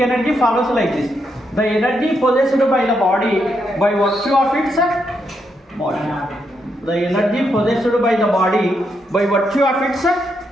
follows like this. The energy possessed by the body by virtue of its motion. The energy possessed by the body by virtue of its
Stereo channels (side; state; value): both; normal; correlation 0.80